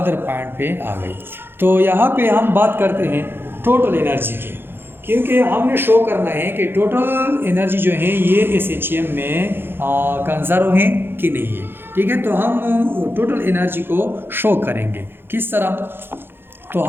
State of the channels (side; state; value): left; late; 0.10 ms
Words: पॉइंट पे आ गई। तो यहाँ पे हम बात करते हैं टोटल एनर्जी की, क्योंकि हमने शो करना है कि टोटल एनर्जी जो है ये SHM में कंजर्व है कि नहीं है, ठीक है। तो हम टोटल एनर्जी को शो करेंगे किस तरह, तो